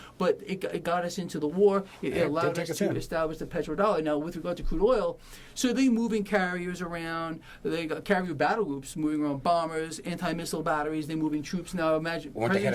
But it got us into the war. It allowed us to establish the petrodollar. Now, with regard to crude oil, so they moving carriers around. They got carrier battle groups moving around, bombers, anti-missile batteries. They're moving troops now. Imagine when they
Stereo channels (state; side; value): identical; both; correlation 1.00